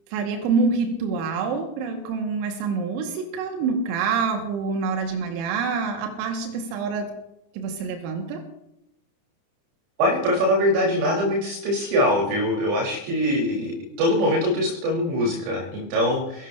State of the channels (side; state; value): left; late; 30 ms